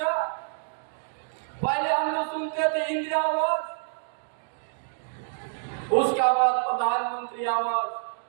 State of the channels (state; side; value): silent; left; digital silence